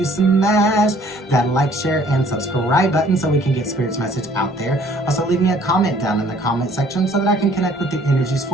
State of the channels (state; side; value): normal; both; correlation 0.58